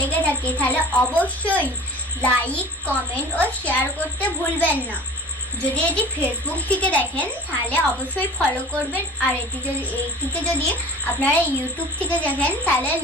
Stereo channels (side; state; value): both; normal; correlation 0.41